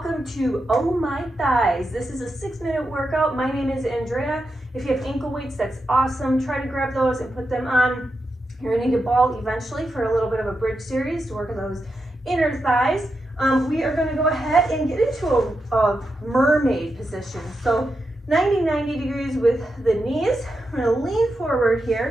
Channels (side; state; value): both; normal; correlation 0.87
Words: to Oh My Thighs. This is a 6-minute workout. My name is Andrea. If you have ankle weights, that's awesome. Try to grab those and put them on. You're gonna need a ball eventually for a little bit of a bridge series to work on those inner thighs. We are gonna go ahead and get into a mermaid position. So 90 degrees with the knees. We're gonna lean forward